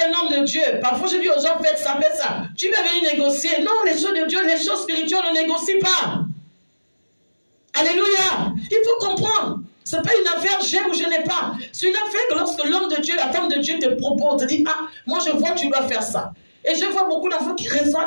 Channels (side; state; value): both; inverted; correlation -1.00